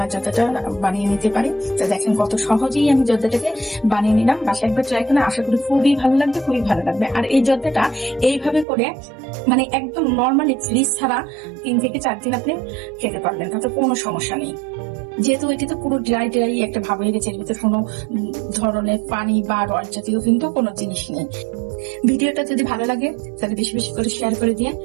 জর্দাটা বানিয়ে নিতে পারি। তো দেখেন কত সহজেই আমি জর্দাটাকে বানিয়ে নিলাম। বাসায় একবার ট্রাই করে আশা করি খুবই ভালো লাগবে, খুবই ভালো লাগবে। আর এই জর্দাটা এইভাবে করে মানে একদম নর্মালি ফ্রিজ ছাড়া 3 থেকে 4 দিন আপনি খেতে পারবেন, তাতে কোনো সমস্যা নেই। যেহেতু এটি তো পুরো ড্রাই একটা ভাব হয়ে গেছে, এর ভিতরে কোনো ধরনের পানি বা রস জাতীয় কিন্তু কোনো জিনিস নেই। ভিডিওটা যদি ভালো লাগে তাহলে বেশি বেশি করে শেয়ার করে দিয়ে,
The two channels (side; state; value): left; drops out; at 8.7 s